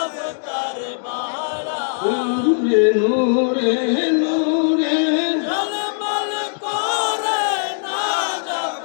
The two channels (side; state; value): right; silent; digital silence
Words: তার মালা। নূরে নূরে নূরে ঝলমল করে নাজাব